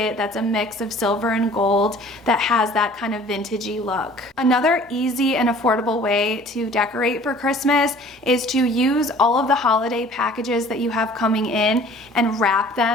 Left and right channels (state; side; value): normal; both; correlation 0.50